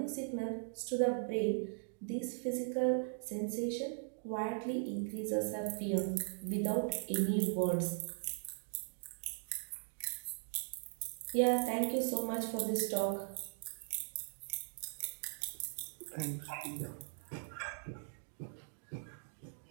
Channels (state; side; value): silent; left; digital silence